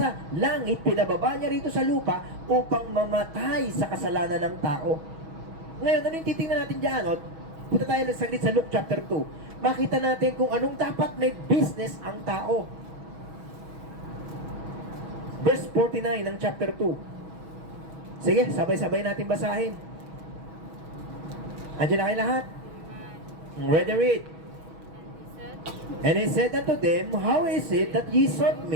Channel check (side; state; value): left; late; 6.2 ms